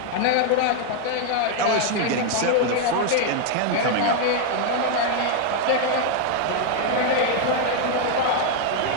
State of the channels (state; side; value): different; both; correlation 0.00